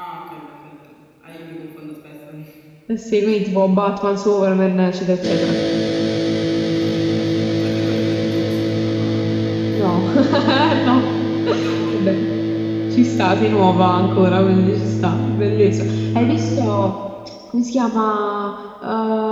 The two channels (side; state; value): both; identical; correlation 1.00